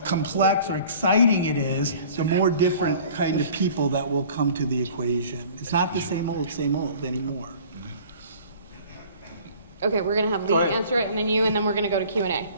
complex or exciting it is, the more different kind of people that will come to the equation. It's not the same old anymore. Okay, we're going to have Lee answer it, and then you, and then we're going to go to Q&A.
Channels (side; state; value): both; inverted; correlation -0.48